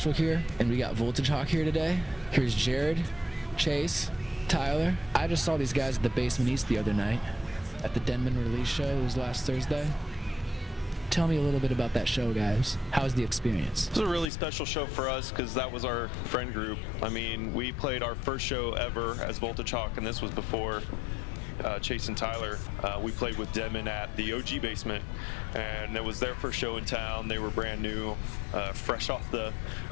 here, and we got Voltagehawk here today. Here's Jared, Chase, Tyler. I just saw these guys at the Basement East the other night at the Denman release show. It was last Thursday. Tell me a little bit about that show, guys. How was the experience? It was a really special show for us because that was our friend group. I mean, we played our first show ever as Voltagehawk, and this was before Chase and Tyler. We played with Denman at the OG Basement, and it was their first show in town. They were brand new, fresh off the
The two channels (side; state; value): right; drops out; at 14.2 s